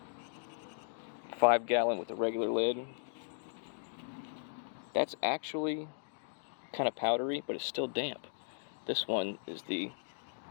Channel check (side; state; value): right; silent; digital silence